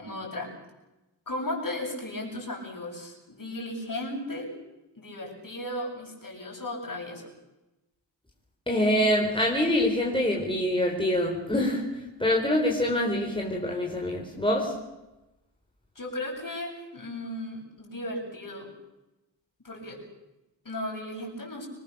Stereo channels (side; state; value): both; normal; correlation 0.34